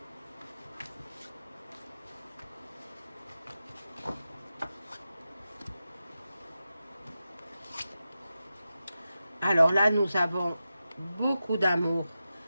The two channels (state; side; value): inverted; both; correlation -0.91